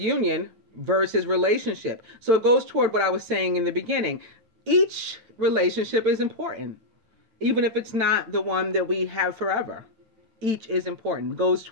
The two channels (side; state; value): left; late; 9.0 ms